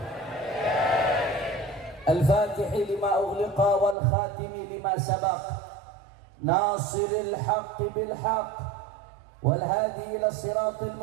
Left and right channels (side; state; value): left; drops out; at 4.0 s